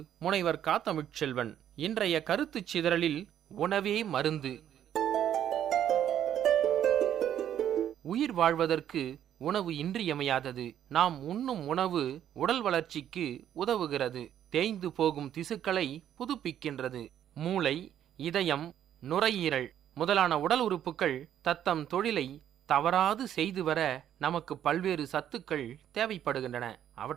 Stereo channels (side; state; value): left; quieter; 10.4 dB